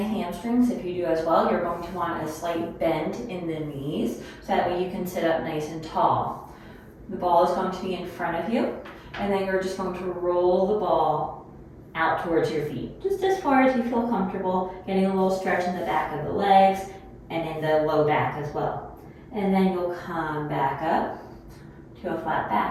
hamstrings, if you do as well, you're going to want a slight bend in the knees so that way you can sit up nice and tall. The ball is going to be in front of you, and then you're just going to roll the ball out towards your feet, just as far as you feel comfortable, getting a little stretch in the back of the legs and in the low back as well. And then you'll come back up to a flat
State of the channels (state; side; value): identical; both; correlation 1.00